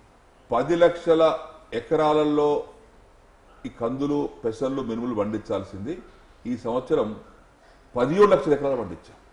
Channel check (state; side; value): identical; both; correlation 1.00